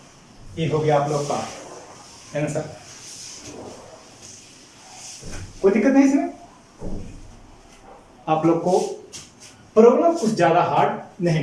ये हो गया आप लोग का आंसर। कोई दिक्कत नहीं इसमें, आप लोग को प्रॉब्लम कुछ ज्यादा हार्ड नहीं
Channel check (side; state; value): both; identical; correlation 1.00